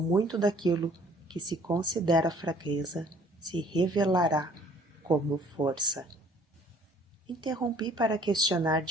daquilo que se considera fraqueza se revelará como força. Interrompi para questionar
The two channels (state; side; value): normal; both; correlation 0.57